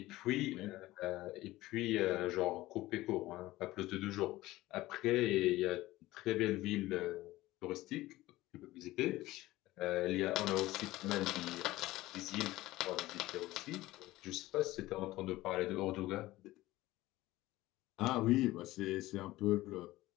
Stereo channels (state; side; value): quieter; right; 17.5 dB